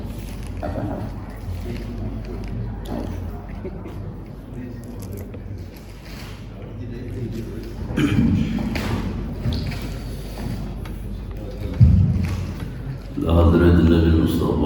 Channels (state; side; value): identical; both; correlation 1.00